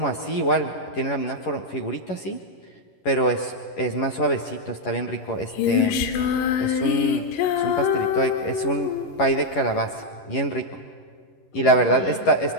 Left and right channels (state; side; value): late; right; 11 ms